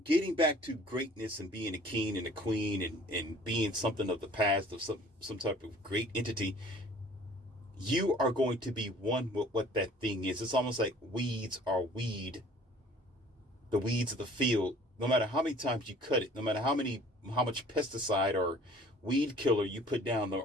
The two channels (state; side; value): normal; both; correlation 0.51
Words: getting back to greatness and being a king and a queen, and being something of the past, of some type of great entity, you are going to be one with what that thing is. It's almost like weeds are weed, the weeds of the field. No matter how many times you cut it, no matter how much pesticide or weed killer you put down